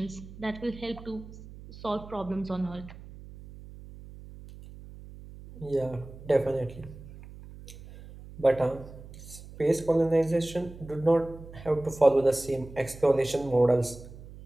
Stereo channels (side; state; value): right; noise; hum, 16 dB below the sound